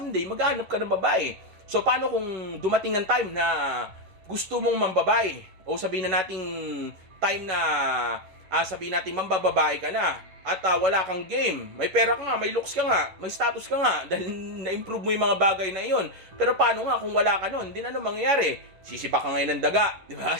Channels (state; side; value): late; left; 11 ms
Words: maghanap ka ng babae. So paano kung dumating ng time na gusto mong mambabae o sabihin na nating time na sabihin natin mambababae ka na at wala kang game, may pera ka nga, may looks ka nga, may status ka nga dahil na-improve mo yung mga bagay na iyon. Pero paano nga kung wala ka nun? Hindi na ano mangyayari? Sisiba ka ngayon ng daga, di ba?